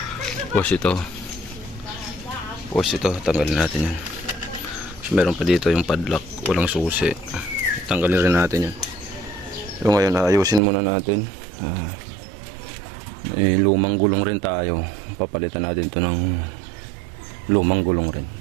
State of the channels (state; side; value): drops out; left; at 10.6 s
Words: tapos ito tanggalin natin yan. So meron pa dito yung padlock, walang susi, tanggalin rin natin yan. So ngayon ayusin muna natin. May lumang gulong rin tayo, papalitan natin to ng lumang gulong rin.